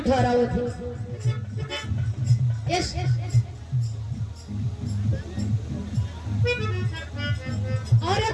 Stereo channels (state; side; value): identical; both; correlation 1.00